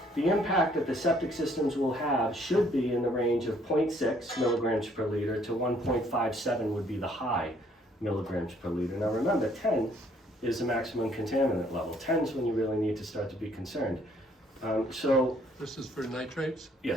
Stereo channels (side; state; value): both; normal; correlation 0.64